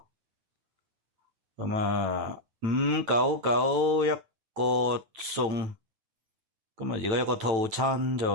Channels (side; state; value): left; late; 9.1 ms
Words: 咁599一個餸，咁而家一個套餐